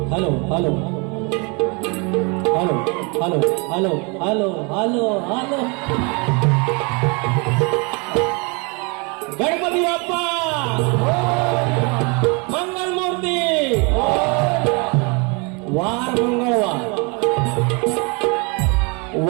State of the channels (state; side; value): quieter; left; 31.3 dB